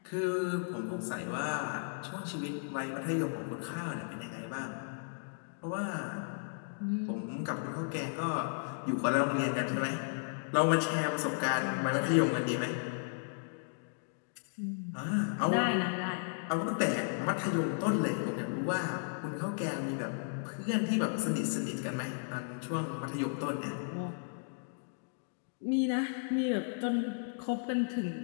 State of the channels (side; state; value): right; silent; digital silence